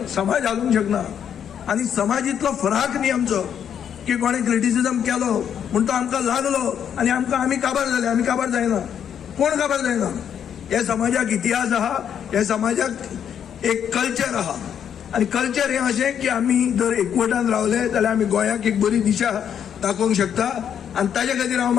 समाज हालूंक शकना. आनी समाज इतलो फराक न्ही आमचो की कोणें क्रिटिसिजम केलो म्हूण तो आमकां लागलो आनी आमी काबार जाले. आमी काबार जायना, कोण काबार जायना. हे समाजाक इतिहास आहा, हे समाजाक एक कल्चर आहा. आनी कल्चर हें अशें की आमी जर एकवटान रावले जाल्यार आमी गोंयाक एक बरी दिशा दाखोवंक शकता. आनी ताजे खातीर हांव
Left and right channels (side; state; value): right; quieter; 8.7 dB